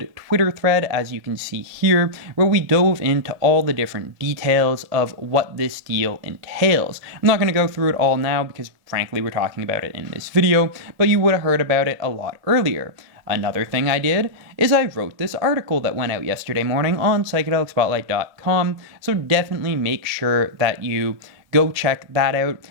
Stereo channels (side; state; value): left; late; 1.8 ms